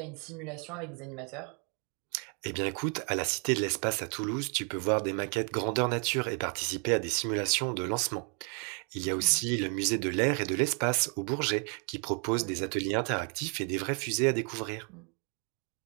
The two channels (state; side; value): quieter; left; 38.2 dB